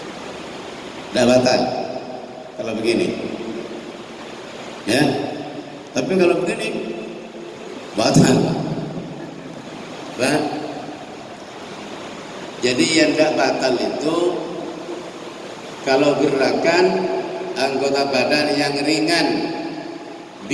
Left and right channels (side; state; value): both; identical; correlation 1.00